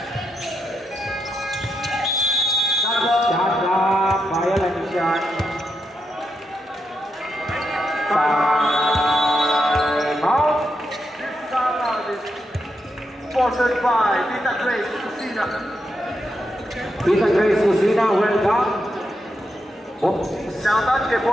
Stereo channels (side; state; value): both; normal; correlation 0.84